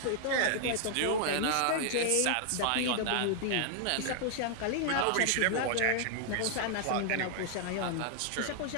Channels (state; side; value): different; both; correlation 0.00